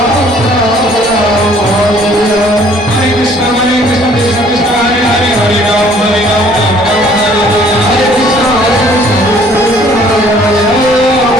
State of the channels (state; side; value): normal; both; correlation 0.58